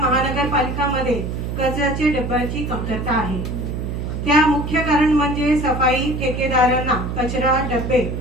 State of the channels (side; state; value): right; noise; hum, 4 dB below the sound